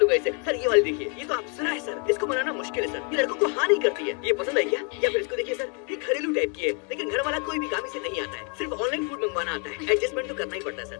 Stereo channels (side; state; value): right; quieter; 38.1 dB